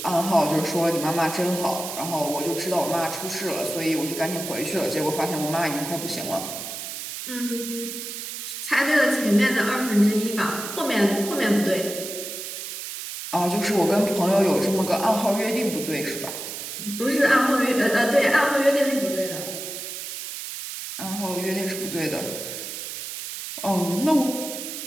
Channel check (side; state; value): right; noise; hiss, 7 dB below the sound